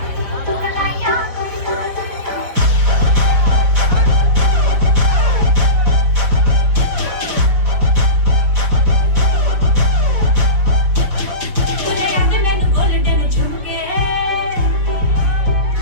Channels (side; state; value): left; late; 5.3 ms